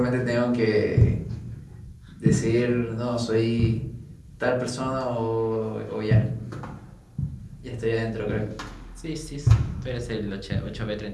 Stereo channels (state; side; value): identical; both; correlation 1.00